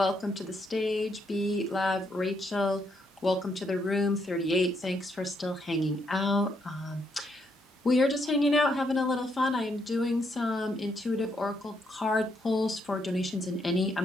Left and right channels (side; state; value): both; normal; correlation 0.75